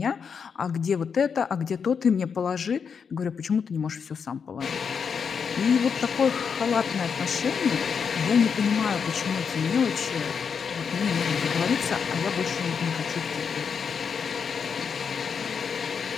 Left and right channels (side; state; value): right; quieter; 6.4 dB